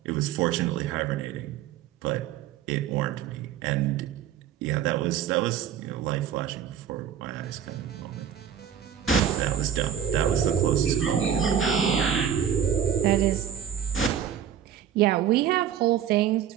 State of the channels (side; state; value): left; quieter; 9.0 dB